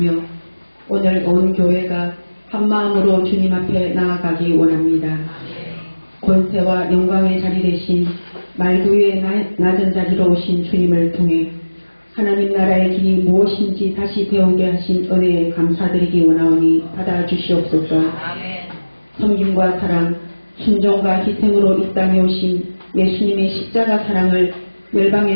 오늘 온 교회가 한마음으로 주님 앞에 나아가기 원합니다. 권세와 영광의 자리 대신 말구 위에 낮은 자리로 오신 주님을 통해 하나님 나라의 길이 무엇인지 다시 배우게 하신 은혜에 감사드리기 원하오니 받아주시옵소서. 섬김과 사랑, 순종과 희생으로 이 땅에 오신 예수님의 십자가 사랑을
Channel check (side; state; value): both; inverted; correlation -1.00